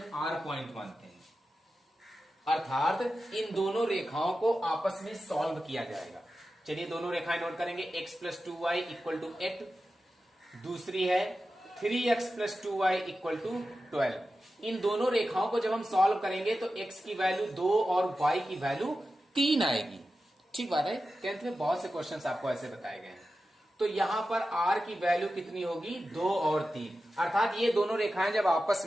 R पॉइंट मानते हैं, अर्थात इन दोनों रेखाओं को आपस में सॉल्व किया जाएगा। चलिए दोनों रेखाएं नोट करेंगे, x plus 2y equal to 8, दूसरी है 3x plus 2y equal to 12। इन दोनों रेखाओं को जब हम सॉल्व करेंगे तो x की वैल्यू 2 और y की वैल्यू 3 आएगी, ठीक बात है। 10th में बहुत से क्वेश्चंस आपको ऐसे बताए गए हैं। तो यहां पर r की वैल्यू कितनी होगी, 2 और 3, अर्थात ये दोनों रेखाएं जब आपस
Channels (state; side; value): normal; both; correlation 0.92